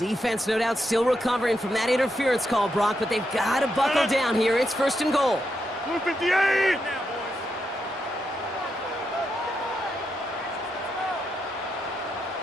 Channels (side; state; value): both; normal; correlation 0.83